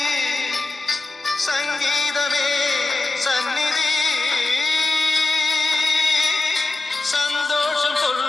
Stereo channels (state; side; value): quieter; right; 3.3 dB